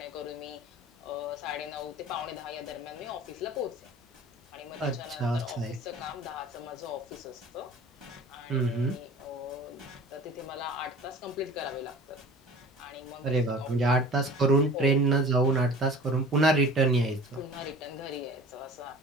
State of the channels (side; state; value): both; normal; correlation 0.43